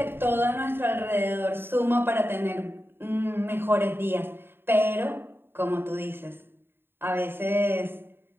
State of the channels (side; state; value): left; late; 0.11 ms